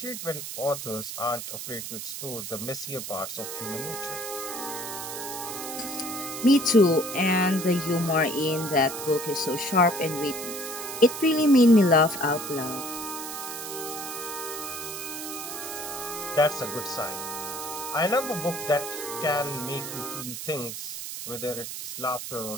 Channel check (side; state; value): right; noise; hiss, 7 dB below the sound